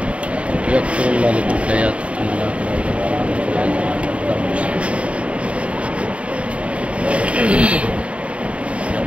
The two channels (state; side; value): late; left; 0.062 ms